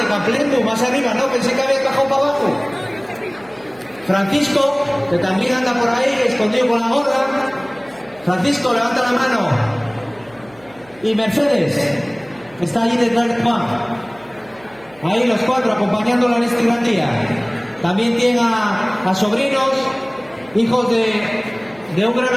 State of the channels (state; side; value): noise; right; hum, 27 dB below the sound